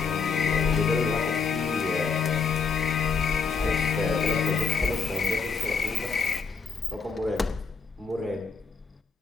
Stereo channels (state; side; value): quieter; right; 5.3 dB